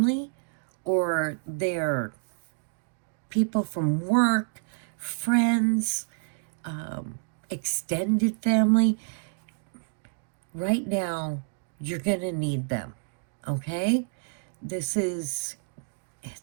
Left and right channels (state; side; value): silent; left; digital silence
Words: or they're people from work, friends, extended family. Right now, you're gonna need them, okay? It's